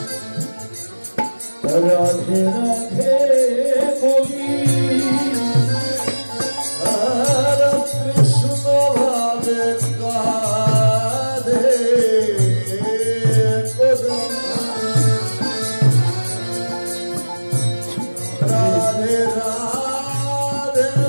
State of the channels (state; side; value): inverted; both; correlation -1.00